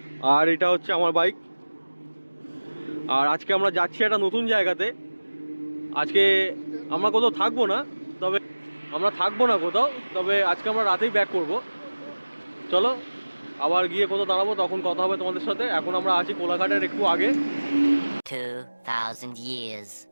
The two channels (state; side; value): inverted; both; correlation -1.00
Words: আর এটা হচ্ছে আমার বাইক। আর আজকে আমরা যাচ্ছি একটা নতুন জায়গাতে। আজকে আমরা কোথাও থাকবো না, তবে আজকে আমরা রাতেই ব্যাক করব। চলো আবার গিয়ে কোথাও দাঁড়াবো, তখন কথা হবে তোমাদের সাথে। এখন আমরা আছি কোলাঘাটের একটু আগে। 2000 years